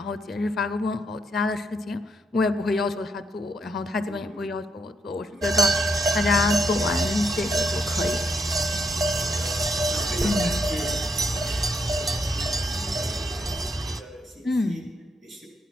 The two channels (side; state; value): both; normal; correlation 0.78